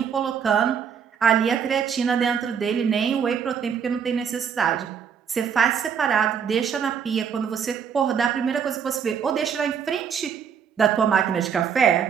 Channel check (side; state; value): left; quieter; 7.3 dB